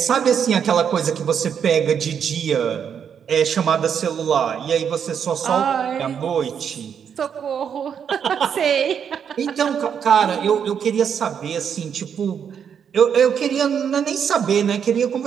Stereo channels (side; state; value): left; quieter; 7.7 dB